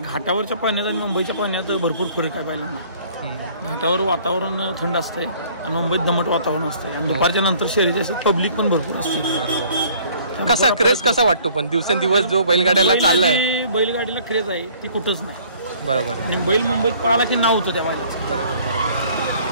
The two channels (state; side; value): inverted; both; correlation -0.55